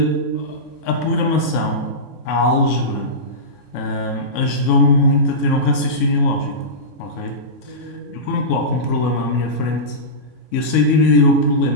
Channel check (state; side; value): late; right; 3.6 ms